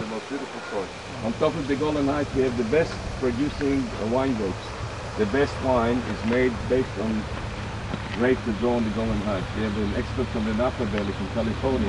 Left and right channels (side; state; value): both; identical; correlation 1.00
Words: most beautiful soil. On top of the Golan Heights, we have the best producing wine grapes. The best wine is made based on grapes that grow on the Golan Heights. We have an expert from the Napa Valley from